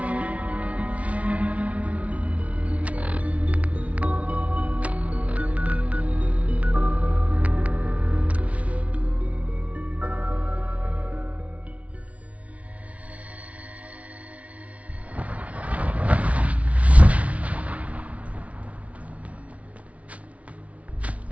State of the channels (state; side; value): late; left; 0.065 ms